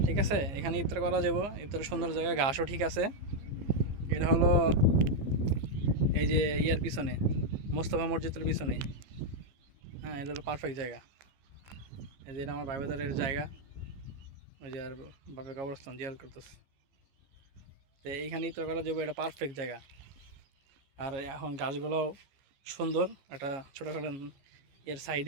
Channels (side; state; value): left; late; 15 ms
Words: ঠিক আছে। এখানে ইফতার করা যাবো, ইফতারের সুন্দর জায়গা, ঘাসও ঠিক আছে। এটা হলো এই যে ইয়ার পিছনে, মোস্তফা মসজিদের পিছনে। হ্যাঁ, এটা হলো পারফেক্ট জায়গা। এই যে এটা আমার ভাইবাদারের জায়গা, ওই যে আর বাপের কবরস্থান জিয়ার করতেছে। তো এইখানে ইফতার করা যাবো, এটা পারফেক্ট জায়গা। আর এখন গাছগুলোও সুন্দর, একটা ছোটোখাটো এর